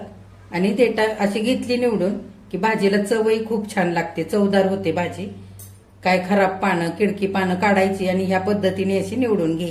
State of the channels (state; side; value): identical; both; correlation 1.00